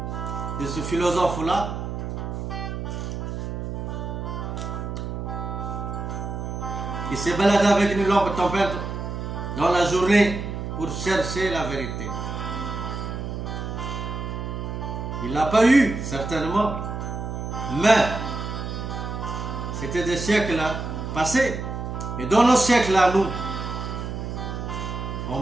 de ce philosophe-là, qui s'est baladé avec une lampe tempête dans la journée pour chercher la vérité. Il ne l'a pas eu, certainement, mais c'était des siècles passés. Mais dans nos siècles à nous,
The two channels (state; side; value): noise; right; hum, 5 dB below the sound